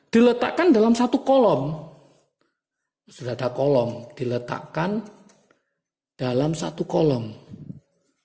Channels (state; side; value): identical; both; correlation 1.00